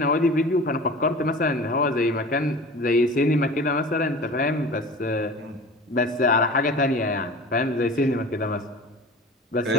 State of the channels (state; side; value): normal; both; correlation 0.38